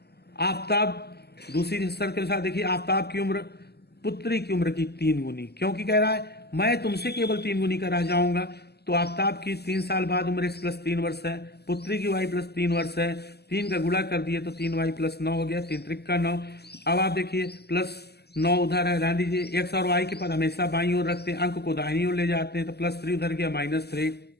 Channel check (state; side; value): late; right; 0.47 ms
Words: आफताब दूसरी शर्त के अनुसार देखिए आफताब की उम्र पुत्री की उम्र की 3 गुनी, क्योंकि कह रहा है मैं तुमसे केवल 3 गुनी का रह जाऊंगा। तो आफताब की 3 साल बाद उम्र x प्लस 3 वर्ष है, पुत्री की y प्लस 3 वर्ष है। 3 का गुणा कर दिए तो 3y प्लस 9 हो गया, 3 त्रिक का 9। अब आप देखिए प्लस 9 उधर है, रहने दीजिए। x और y के पद हमेशा बाईं ओर रखते हैं, अंक को दाहिनी ओर ले जाते हैं। तो +3 उधर गया, -3।